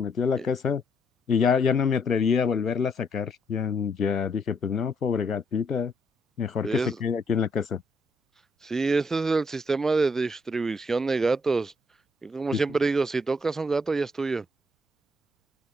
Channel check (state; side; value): normal; both; correlation 0.72